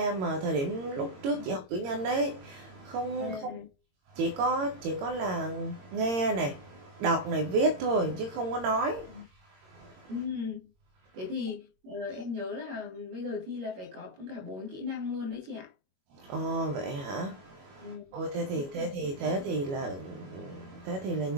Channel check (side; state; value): left; late; 22 ms